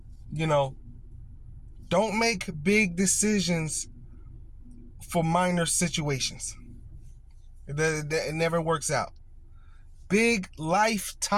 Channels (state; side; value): identical; both; correlation 1.00